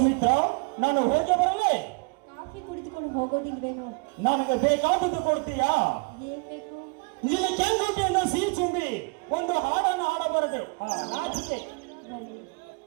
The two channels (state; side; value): quieter; left; 32.8 dB